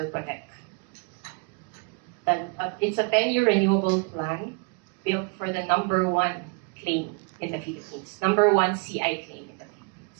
Protect. And it's a 10-year renewable plan built for the #1 claim in the Philippines, #1 CI claim in the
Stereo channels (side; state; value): left; quieter; 33.7 dB